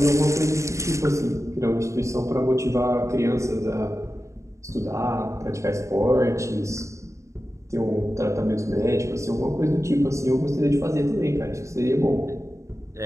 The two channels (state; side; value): late; left; 0.14 ms